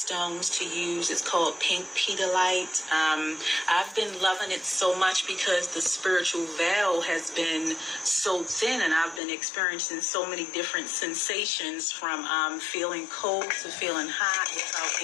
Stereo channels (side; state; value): right; drops out; at 9.2 s